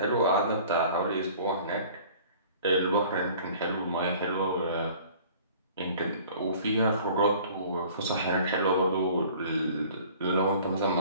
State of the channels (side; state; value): both; inverted; correlation -0.49